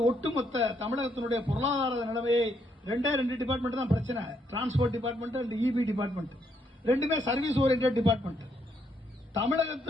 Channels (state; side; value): normal; both; correlation 0.74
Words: ஒட்டுமொத்த தமிழகத்தினுடைய பொருளாதார நிலைமையை 2 டிபார்ட்மெண்ட் தான் பிரச்சனை. Transport department and EB department ரெண்டுமே சர்வீஸ் ஓரியன்டட் டிபார்ட்மெண்ட்.